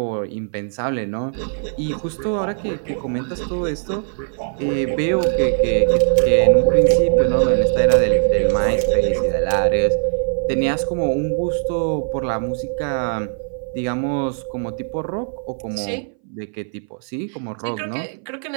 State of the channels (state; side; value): silent; left; 62 dB below the other